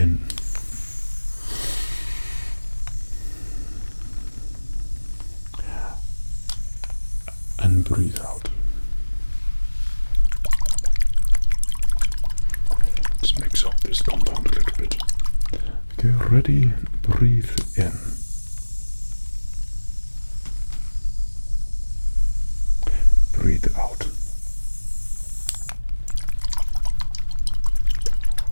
And breathe out. Let's mix up this compound a little bit. Okay, ready? Breathe in. Breathe out.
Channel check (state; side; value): inverted; both; correlation -1.00